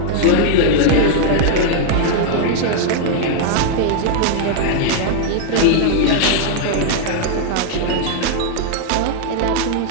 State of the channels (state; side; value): different; both; correlation -0.01